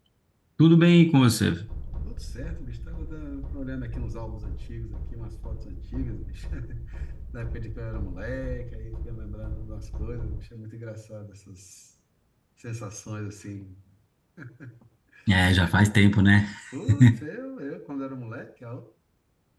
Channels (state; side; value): identical; both; correlation 1.00